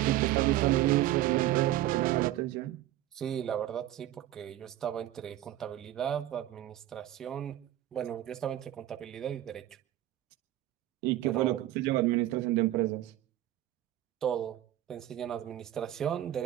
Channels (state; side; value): quieter; left; 13.9 dB